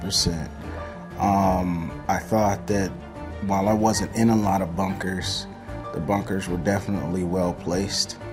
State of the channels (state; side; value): identical; both; correlation 1.00